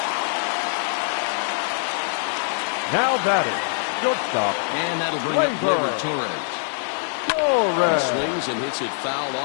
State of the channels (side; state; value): right; silent; digital silence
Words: Now batting, shortstop. And that'll bring up Gleyber Torres. He swings and hits it foul